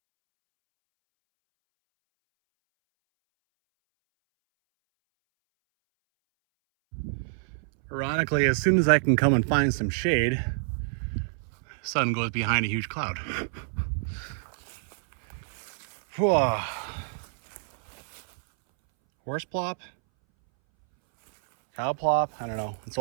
Ironically, as soon as I can come and find some shade, the sun goes behind a huge cloud. Whoa. Horse plop? Cow plop? I don't know. It's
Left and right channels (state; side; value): silent; left; 60 dB below the other